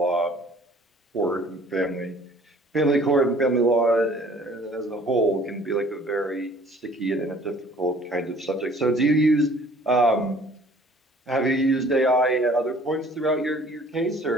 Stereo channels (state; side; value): normal; both; correlation 0.53